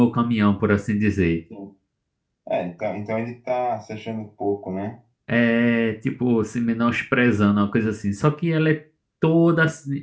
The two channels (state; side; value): identical; both; correlation 1.00